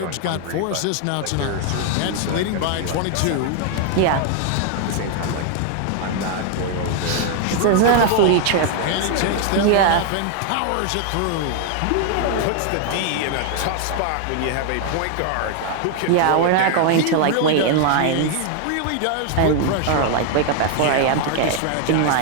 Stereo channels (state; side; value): different; both; correlation 0.00